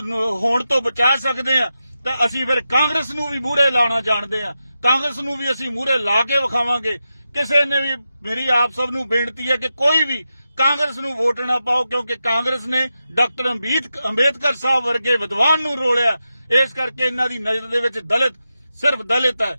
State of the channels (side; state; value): both; inverted; correlation -0.90